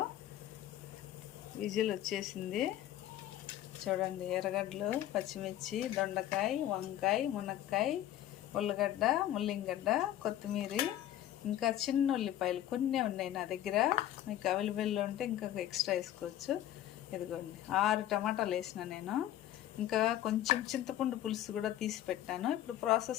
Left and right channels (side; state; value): right; quieter; 12.6 dB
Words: విజిల్ వచ్చేసింది. చూడండి, ఎర్రగడ్డలు, పచ్చిమిర్చి, దొండకాయ, వంకాయ, మునక్కాయ, ఉల్లగడ్డ, ముల్లింగడ్డ, కొత్తిమీర, ఇంకా చిన్న ఉల్లిపాయలు కొన్ని ఉన్నాయి నా దగ్గర. మీకు అవైలబుల్లో ఉంటే ఇంకా ఎక్స్ట్రా వేసుకోవచ్చు. ఇదిగోండి, 6 టమాటాలు వేసిన నేను. ఇంకా కొంచెం చింతపండు పులుసు కూడా తీసి పెట్టాను. ఇప్పుడు